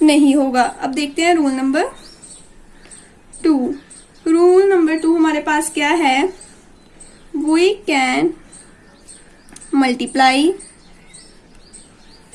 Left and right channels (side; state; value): both; identical; correlation 1.00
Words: नहीं होगा। अब देखते हैं रूल नंबर 2। रूल नंबर 2 हमारे पास क्या है, we can multiply